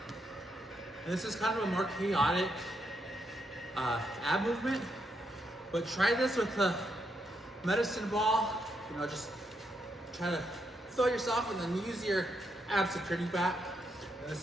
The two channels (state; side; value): normal; both; correlation 0.79